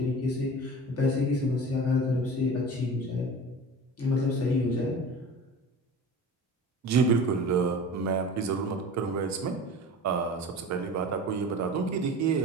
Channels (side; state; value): both; normal; correlation 0.36